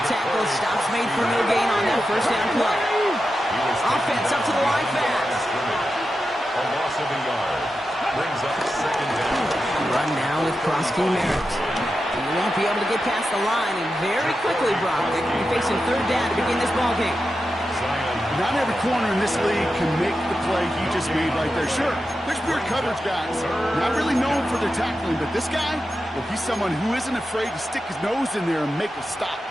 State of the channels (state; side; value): normal; both; correlation 0.90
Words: tackle. Stops made for no gain on that first down play. Offense up to the line fast. A loss of a yard. Brings up 2nd down. Run now with Prosky Merritt. You won't be able to get past the line, and very quickly, Brock, they're going to be facing 3rd down to begin this ballgame. Not every corner in this league can make the play he just made right there. Sure, there's pure coverage guys. Not really known for their tackling, but this guy, well, he's someone who isn't afraid to stick his nose in there and make a stop.